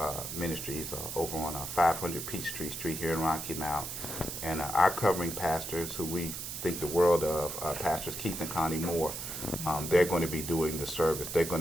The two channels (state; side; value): noise; right; hiss, 6 dB below the sound